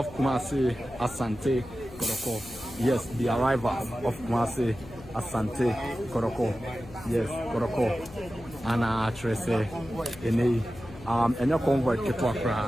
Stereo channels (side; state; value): left; noise; hum, 18 dB below the sound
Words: Kumasi Asante Kotoko. Yes, the arrival of Kumasi Asante Kotoko. Yes, Kotoko ana Trese enei enye convoy ketwa